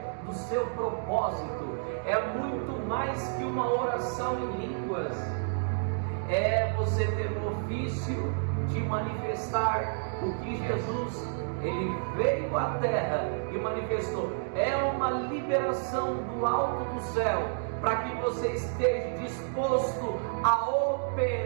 do seu propósito. É muito mais que uma oração em línguas. É você ter o ofício de manifestar o que Jesus, Ele veio à terra e manifestou. É uma liberação do alto do céu, para que você esteja disposto a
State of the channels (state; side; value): silent; left; digital silence